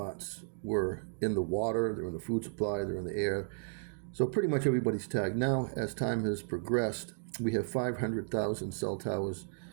were in the water, they're in the food supply, they're in the air. So pretty much everybody's tagged. Now, as time has progressed, we have 500,000 cell towers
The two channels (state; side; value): silent; left; digital silence